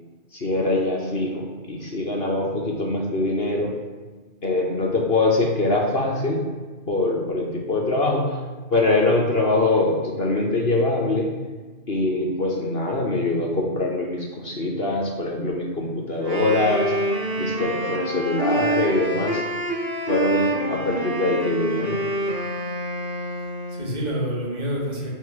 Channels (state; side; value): late; right; 2.5 ms